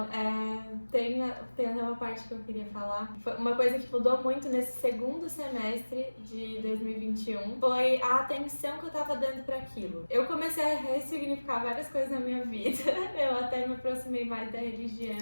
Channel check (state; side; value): inverted; both; correlation -1.00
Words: tem até uma parte que eu queria falar. Foi uma coisa que mudou muito nesse segundo semestre de 2021 foi a atenção que eu tava dando pra aquilo. Eu comecei a ressignificar várias coisas na minha vida. Eu até me aproximei mais da